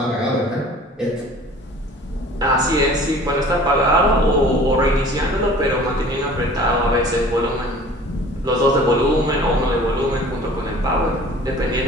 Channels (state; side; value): normal; both; correlation 0.47